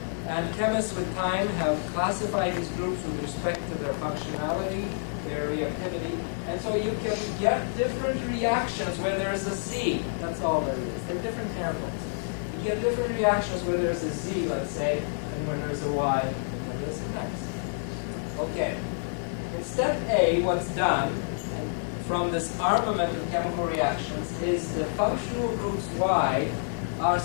And chemists with time have classified these groups with respect to their functionality, their reactivity, and so you can get different reactions where there's a Z. That's all there is. They're different handles. You get different reactions where there's a Z, let's say, and when there's a Y, and when there's an X. Okay. In step A, what's done from this armament of chemical reactions is the functional groups Y are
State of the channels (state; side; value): silent; right; digital silence